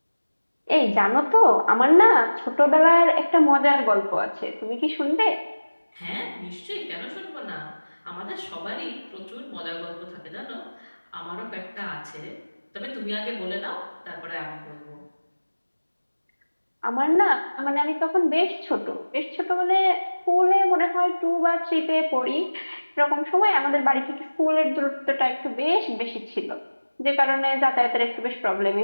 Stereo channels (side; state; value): both; inverted; correlation -1.00